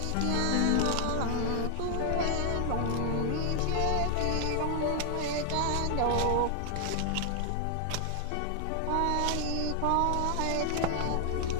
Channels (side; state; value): both; different; correlation 0.00